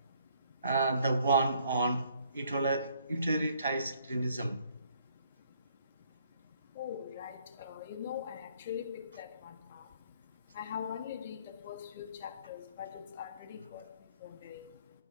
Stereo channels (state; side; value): inverted; both; correlation -0.64